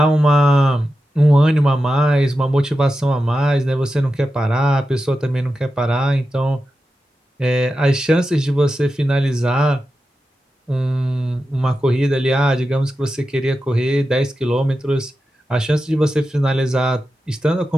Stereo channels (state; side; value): normal; both; correlation 0.91